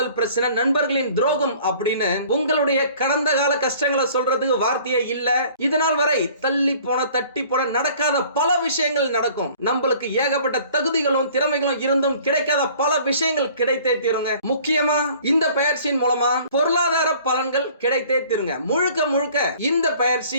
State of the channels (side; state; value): both; inverted; correlation -0.52